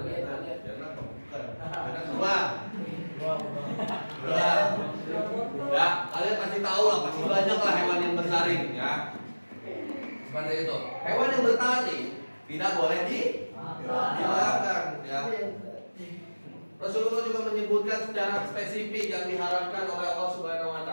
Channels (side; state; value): both; inverted; correlation -1.00